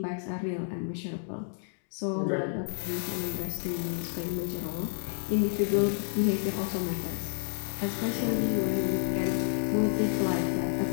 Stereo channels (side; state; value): right; silent; digital silence